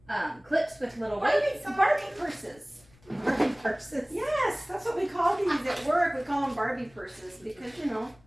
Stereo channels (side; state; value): left; noise; rumble, 29 dB below the sound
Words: clips with little weights on Barbie purses. Barbie purses. Yes, that's what we call these at work. We call them Barbie purses because, you know,